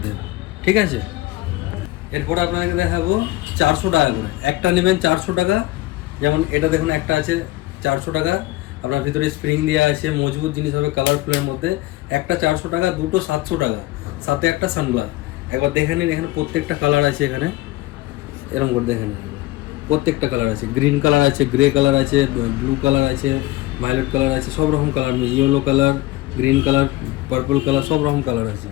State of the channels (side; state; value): right; quieter; 18.5 dB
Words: ঠিক আছে। এরপর আপনাকে দেখাবো 400 টাকা করে। একটা নেবেন 400 টাকা, যেমন এটা দেখুন একটা আছে 400 টাকা, আপনার ভিতরে স্প্রিং দেওয়া আছে, মজবুত জিনিস হবে কালারফুলের মধ্যে। একটা 400 টাকা, দুটো 700 টাকা, সাথে একটা সানগ্লাস। একবার দেখে নিন, এখানে প্রত্যেকটা কালার আছে। এখানে এরকম করে দেখে নিন, প্রত্যেকটা কালার আছে। গ্রিন কালার আছে, গ্রে কালার আছে, ব্লু কালার আছে, ভায়োলেট কালার আছে, সব রকম colour, yellow colour, green colour, purple colour, সব রকম কালার আছে।